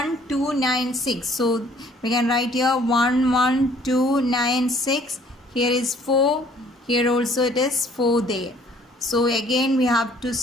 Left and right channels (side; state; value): both; normal; correlation 0.58